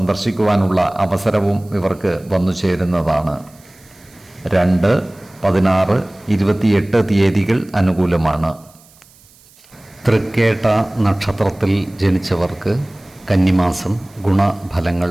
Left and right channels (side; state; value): right; noise; hiss, 28 dB below the sound